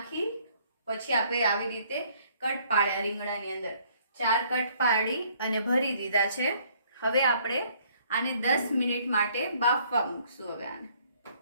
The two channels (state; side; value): inverted; both; correlation -0.62